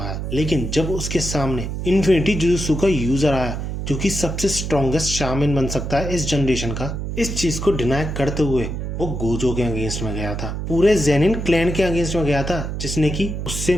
है। लेकिन जब उसके सामने इन्फिनिटी जुजुत्सु का यूजर आया, जो कि सबसे स्ट्रॉन्गेस्ट शामिन बन सकता है इस जनरेशन का, इस चीज को डिनाई करते हुए वो गोजो के अगेंस्ट में गया था, पूरे जेनिन क्लैन के अगेंस्ट में गया था, जिसने कि उससे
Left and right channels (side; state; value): right; noise; hum, 4 dB below the sound